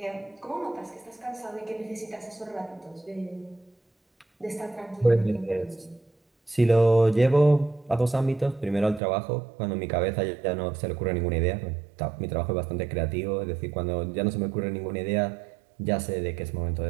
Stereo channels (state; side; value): drops out; left; at 9.0 s